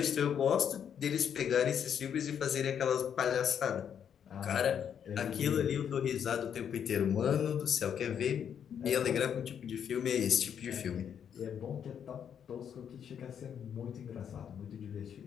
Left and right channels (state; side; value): quieter; right; 8.3 dB